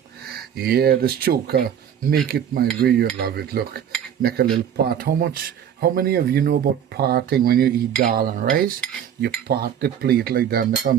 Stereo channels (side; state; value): left; quieter; 9.1 dB